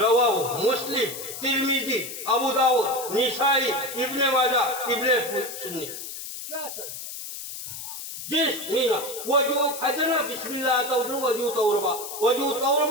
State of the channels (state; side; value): noise; left; hiss, 9 dB below the sound